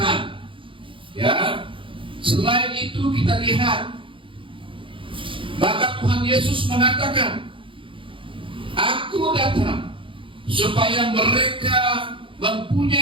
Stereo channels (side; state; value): left; late; 0.25 ms